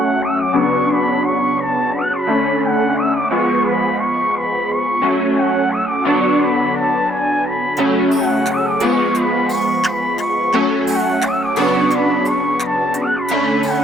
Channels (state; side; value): normal; both; correlation 0.71